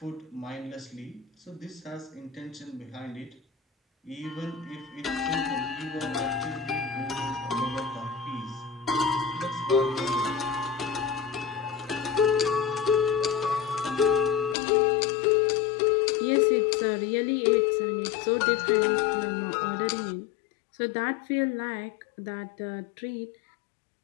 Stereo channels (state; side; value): drops out; right; at 14.6 s